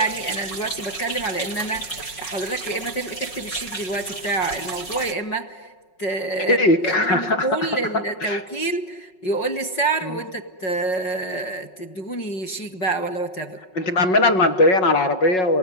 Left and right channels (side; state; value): right; late; 5.4 ms